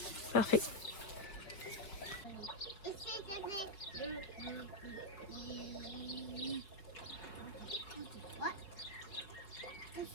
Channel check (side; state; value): right; late; 5.3 ms